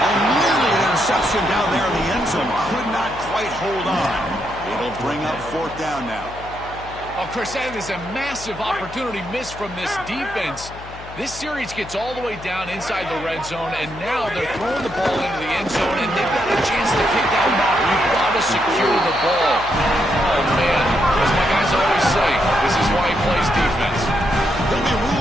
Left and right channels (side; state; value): left; noise; hum, 16 dB below the sound